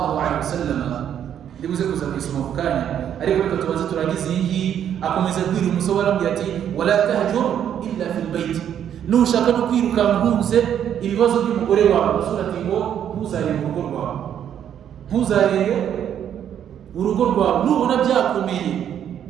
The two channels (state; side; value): quieter; left; 9.5 dB